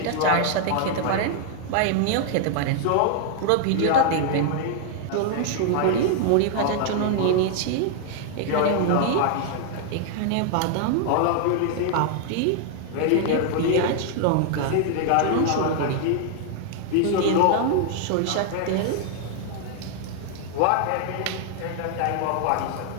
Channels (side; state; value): both; different; correlation 0.00